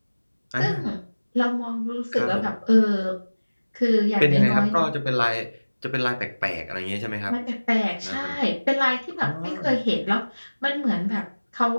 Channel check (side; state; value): both; inverted; correlation -1.00